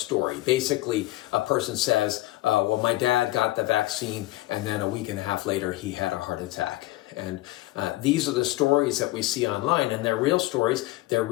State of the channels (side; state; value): right; quieter; 17.9 dB